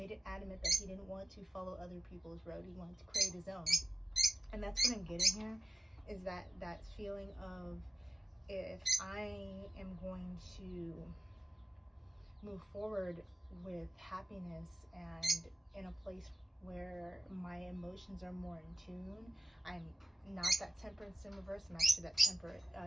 it adamant that he didn't want to follow other people's road. He wanted to create his own. And that's what I'm getting here, is that feeling of, if I am going to move forward with happiness and in a place where my emotions are more in tune, I'm not that temperance in reverse, I'm actually that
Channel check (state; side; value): normal; both; correlation 0.93